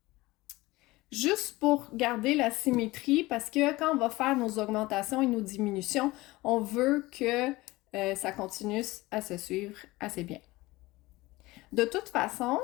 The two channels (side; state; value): right; quieter; 20.0 dB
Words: Juste pour garder la symétrie, parce que quand on va faire nos augmentations et nos diminutions, on veut que ça continue à se suivre assez bien. De toute façon,